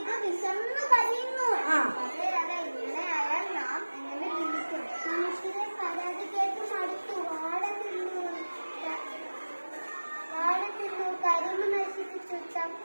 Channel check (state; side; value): inverted; both; correlation -1.00